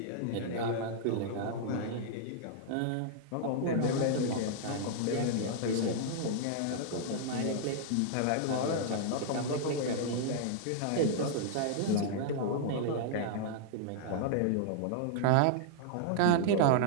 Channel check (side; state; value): both; different; correlation -0.01